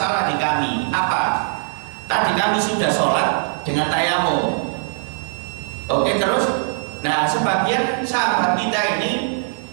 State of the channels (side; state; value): left; silent; digital silence